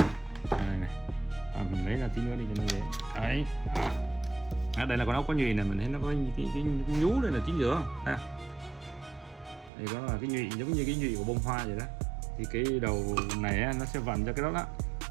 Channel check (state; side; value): drops out; left; at 9.7 s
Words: Mình lấy ra tí nữa đi cho nó dễ. Đấy. Đây là con ốc có nhụy này, mình thấy nó có cái nhú đây là chính giữa ha. Đây có là cái nhụy giống như cái nhụy của bông hoa vậy đó. Thì cái đầu này nó sẽ vặn cho cái đó đó.